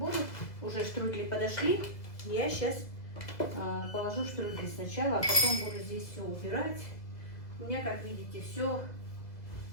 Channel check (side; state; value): right; late; 2.0 ms